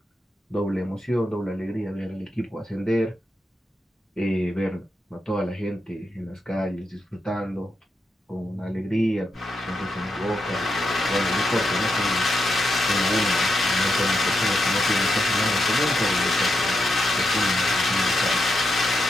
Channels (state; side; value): normal; both; correlation 0.84